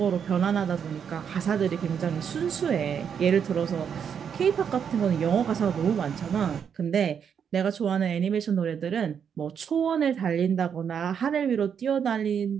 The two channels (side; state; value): left; quieter; 7.6 dB